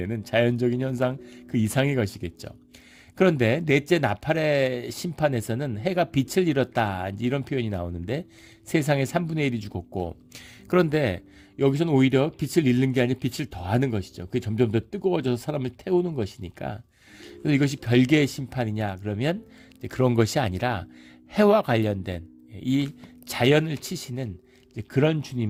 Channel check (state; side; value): identical; both; correlation 1.00